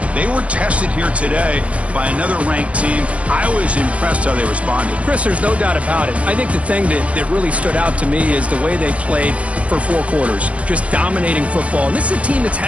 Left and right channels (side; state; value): left; late; 0.064 ms